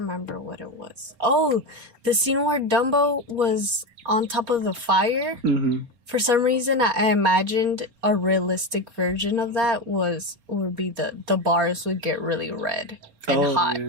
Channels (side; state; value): left; late; 4.3 ms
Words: what it was. Oh, the scene where Dumbo was on top of the fire. For some reason, I imagined a realistic version of that would be the bars would get really red and hot,